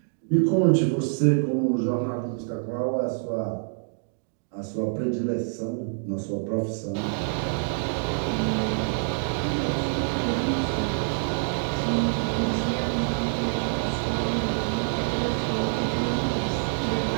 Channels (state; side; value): silent; left; digital silence